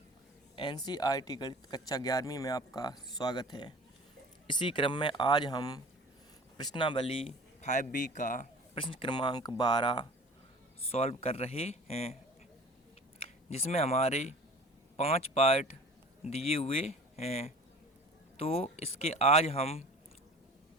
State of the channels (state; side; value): normal; both; correlation 0.43